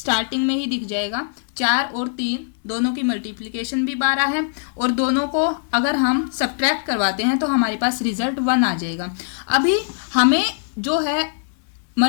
में ही दिख जाएगा 4 और 3 दोनों की मल्टीप्लिकेशन भी 12 है और दोनों को अगर हम सब्ट्रैक्ट करवाते हैं तो हमारे पास रिजल्ट 1 आ जाएगा। अभी हमें जो है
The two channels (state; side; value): silent; right; digital silence